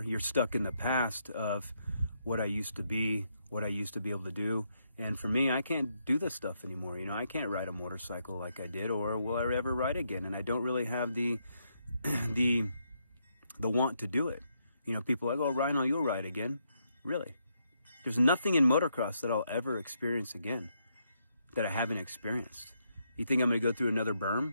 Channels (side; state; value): both; inverted; correlation -0.78